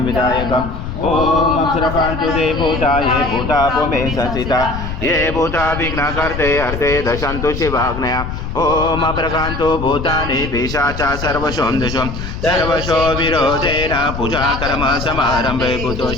विधायकम्. ॐ अप्सरपान्तु ते भूता ये भूता भूमे संस्थिता ये भूता विघ्नकर्ते हर्ते दशन्तु शिवाग्नया ॐ अप्रकान्तु भूतानि पिशाचा सर्वशोऽन्दिशो सर्वशो विरोधेन पूजा कर्म समारम्भे भूतो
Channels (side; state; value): left; noise; rumble, 6 dB below the sound